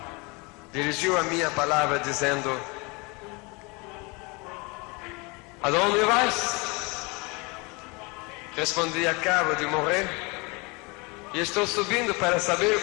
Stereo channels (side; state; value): right; quieter; 28.0 dB